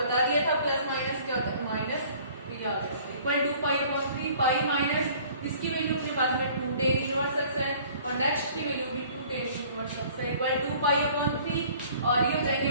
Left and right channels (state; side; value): inverted; both; correlation -0.52